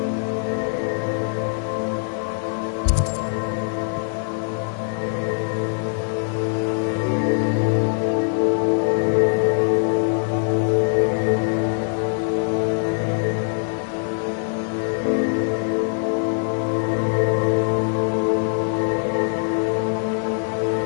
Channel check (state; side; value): silent; right; digital silence